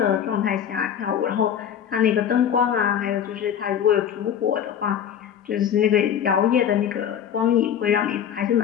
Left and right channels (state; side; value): quieter; right; 9.0 dB